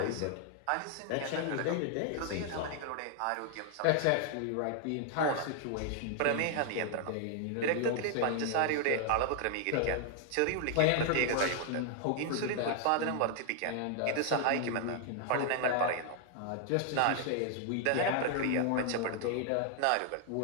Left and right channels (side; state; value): both; different; correlation 0.00